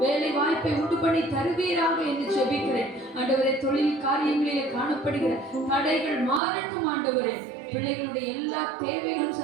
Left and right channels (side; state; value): left; drops out; at 6.4 s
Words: வேலை வாய்ப்பை உண்டு பண்ணி தருவீராக என்று ஜெபிக்கிறேன். ஆண்டவரே தொழில் காரியங்களிலே காணப்படுகிற தடைகள் மாறட்டும். ஆண்டவரே பிள்ளைகளுடைய எல்லா தேவைகளும்